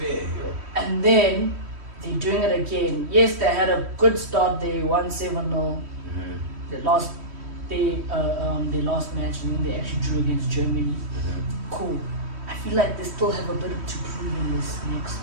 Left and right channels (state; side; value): late; left; 3.1 ms